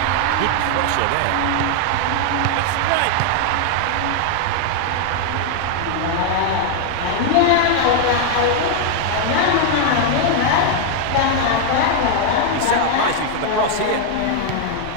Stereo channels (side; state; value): both; different; correlation 0.00